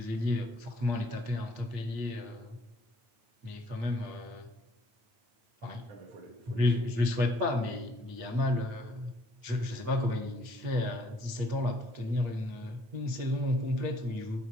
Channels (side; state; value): left; late; 8.5 ms